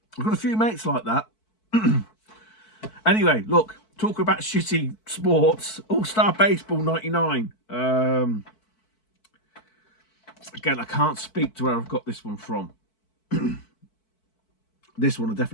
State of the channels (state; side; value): late; right; 4.6 ms